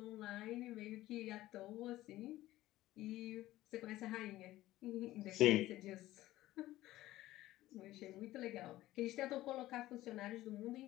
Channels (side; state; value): right; quieter; 15.9 dB